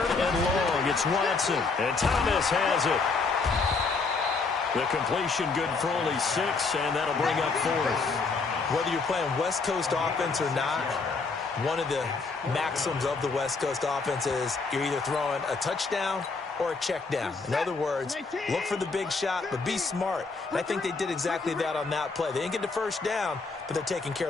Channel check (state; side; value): quieter; right; 4.3 dB